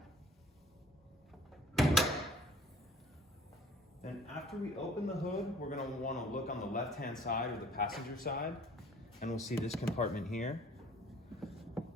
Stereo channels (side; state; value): both; normal; correlation 0.52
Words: And after we open the hood, we're going to want to look on the left-hand side or the passenger side, and we'll see this compartment here.